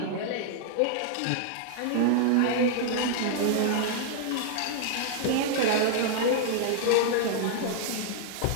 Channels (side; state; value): both; different; correlation 0.00